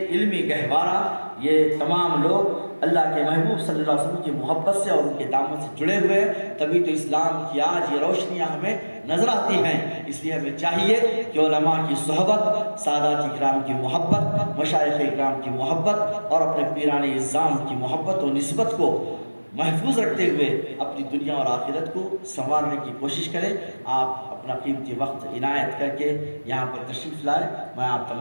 علمی گہوارہ، یہ تمام لوگ اللہ کے محبوب صلی اللہ علیہ وسلم کی محبت سے اور ان کے دامن سے جڑے ہوئے ہیں، تبھی تو اسلام کی آج یہ روشنیاں ہمیں نظر آتی ہیں۔ اس لیے ہمیں چاہیے کہ علماء کی صحبت، سادات اکرام کی محبت، مشائخ اکرام کی محبت اور اپنے پیران اعظام کی محبت و نسبت کو محفوظ رکھتے ہوئے اپنی دنیا اور آخرت کو سنوارنے کی کوشش کریں۔ آپ اپنا قیمتی وقت عنایت کر کے یہاں پر تشریف لائے، میں آپ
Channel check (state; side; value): inverted; both; correlation -1.00